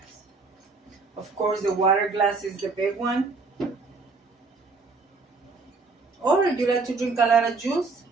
Of course the water glass is the big one. Or if you like to drink a lot of juice,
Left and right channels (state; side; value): quieter; left; 4.1 dB